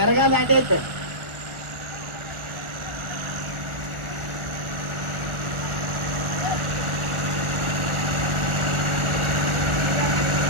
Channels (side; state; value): left; late; 1.4 ms